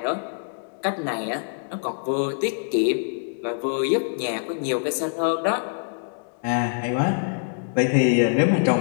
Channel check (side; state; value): right; silent; digital silence